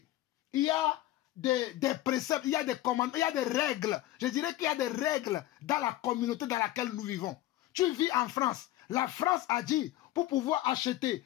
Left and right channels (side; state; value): right; quieter; 15.3 dB